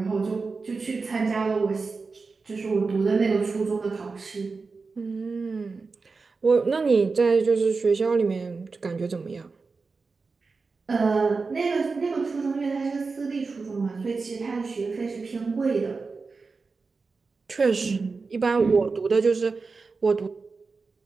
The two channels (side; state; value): left; quieter; 4.3 dB